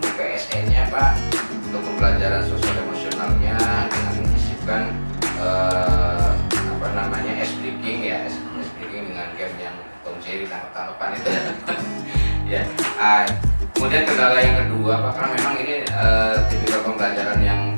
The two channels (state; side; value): inverted; both; correlation -1.00